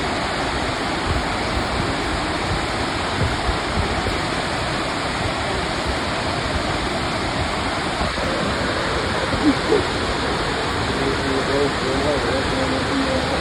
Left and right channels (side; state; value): both; identical; correlation 1.00